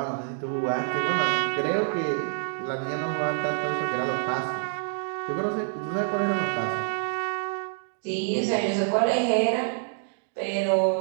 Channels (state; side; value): silent; left; digital silence